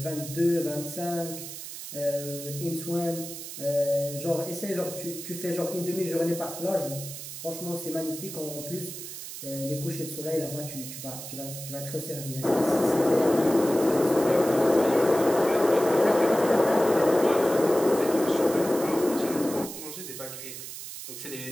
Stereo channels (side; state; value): right; noise; hiss, 10 dB below the sound